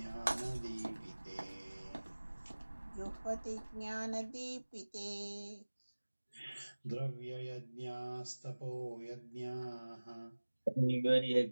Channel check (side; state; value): both; inverted; correlation -1.00